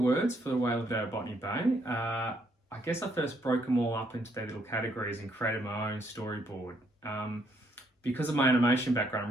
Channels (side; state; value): both; normal; correlation 0.71